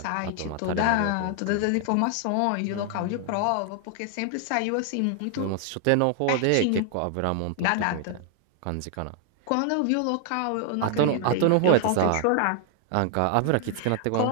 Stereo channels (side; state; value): both; different; correlation 0.00